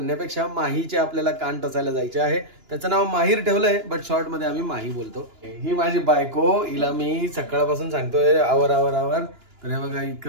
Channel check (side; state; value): left; late; 2.9 ms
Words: माहीचे आपल्याला कान टोचायला जायचे आहे. त्याचं नाव माहीर ठेवलंय, बट शॉर्ट मध्ये आम्ही माही बोलतो. ही माझी बायको, हिला मी सकाळपासून सांगतोय आवर आवर आवर. तर हे बघा